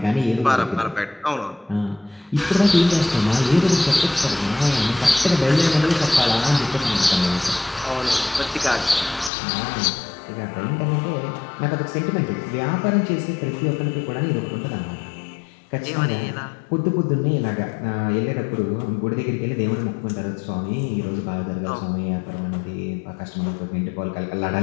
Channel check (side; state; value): right; drops out; at 9.3 s